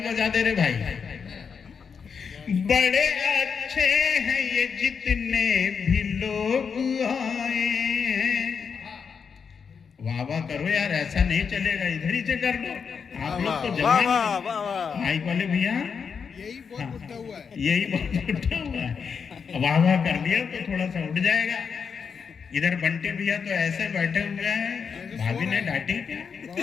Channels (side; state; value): right; quieter; 6.2 dB